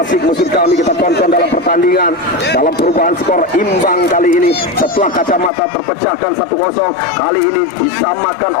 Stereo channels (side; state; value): right; drops out; at 5.5 s